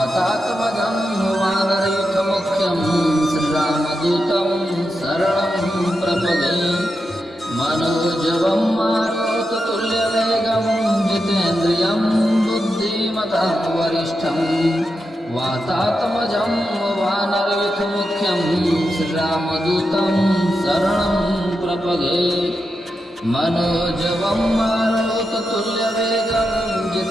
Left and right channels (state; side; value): normal; both; correlation 0.87